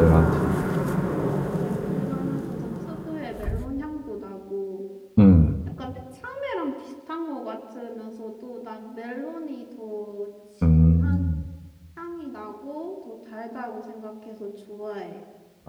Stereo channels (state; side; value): identical; both; correlation 1.00